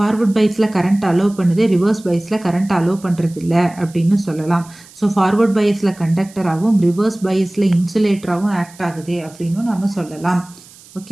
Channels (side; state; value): right; noise; hiss, 23 dB below the sound